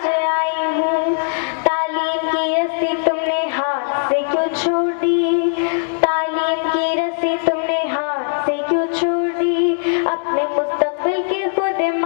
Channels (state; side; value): silent; right; digital silence